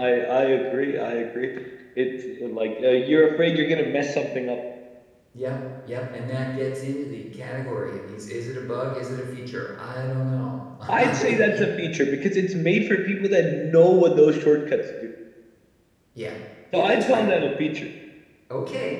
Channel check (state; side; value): identical; both; correlation 1.00